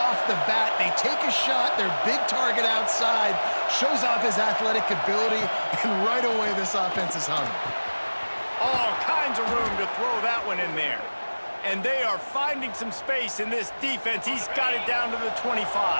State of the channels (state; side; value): inverted; both; correlation -1.00